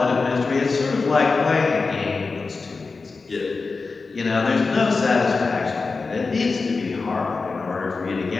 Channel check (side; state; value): right; quieter; 4.2 dB